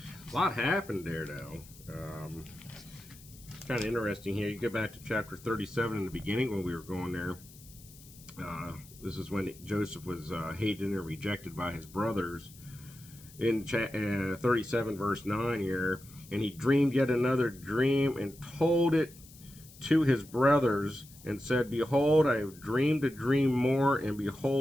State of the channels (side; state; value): left; noise; hiss, 21 dB below the sound